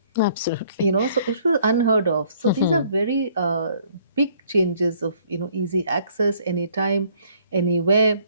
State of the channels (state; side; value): inverted; both; correlation -0.62